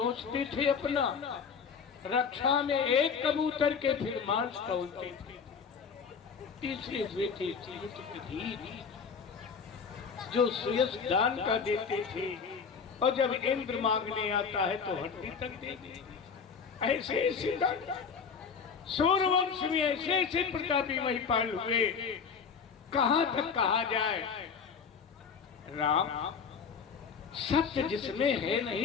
थे अपना, रक्षा में एक कबूतर के फिर मांस तोलते थे। तीसरे हुए थे दधीच, जो सुयश दान का देते थे और जब इंद्र मांगने आता है तो हड्डी तक दे देते। ऐसे ऐसे सूर्यवंश में ऐसे ऐसे प्रतापी महिपाल हुए। कहां तक कहा जाए। राम सत्य जिसमें है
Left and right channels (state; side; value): quieter; right; 6.1 dB